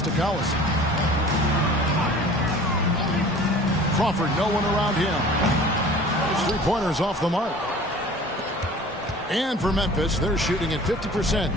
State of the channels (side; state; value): both; normal; correlation 0.44